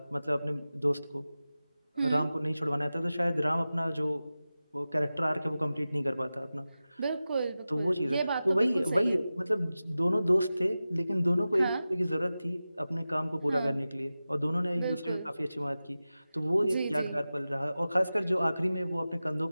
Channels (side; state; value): both; inverted; correlation -0.95